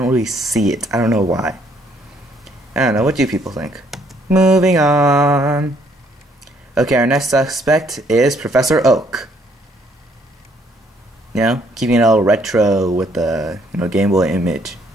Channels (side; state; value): both; normal; correlation 0.67